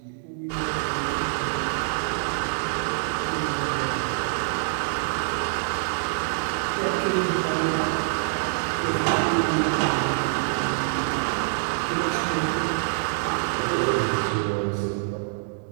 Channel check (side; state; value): left; silent; digital silence